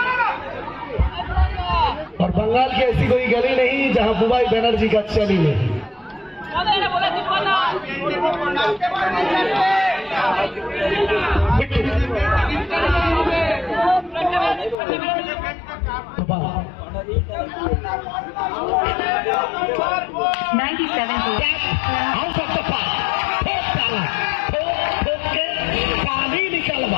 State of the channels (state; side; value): drops out; right; at 14.8 s